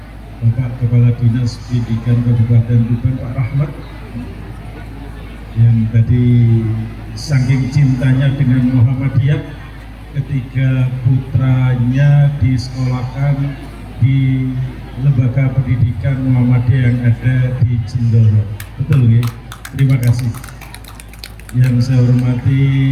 Bapak Kepala Dinas Pendidikan Kabupaten Tuban, Pak Rahmat, yang tadi saking cintanya dengan Muhammadiyah ketika putranya disekolahkan di lembaga pendidikan Muhammadiyah yang ada di Jendoro. Betul ya? Terima kasih. Yang saya hormati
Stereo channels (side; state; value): both; identical; correlation 1.00